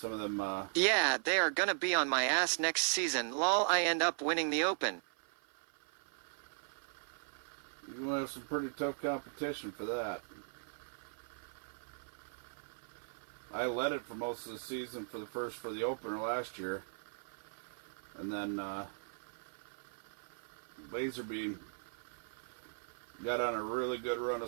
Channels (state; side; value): silent; left; 52 dB below the other